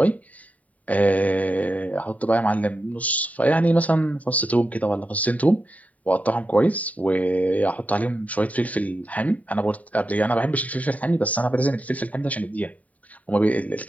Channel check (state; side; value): late; right; 0.070 ms